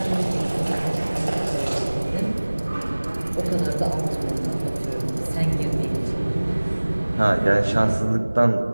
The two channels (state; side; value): inverted; both; correlation -1.00